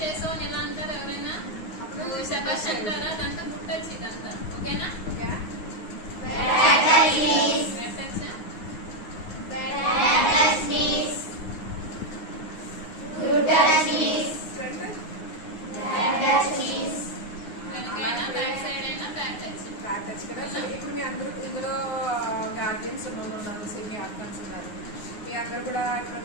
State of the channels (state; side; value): late; right; 9.5 ms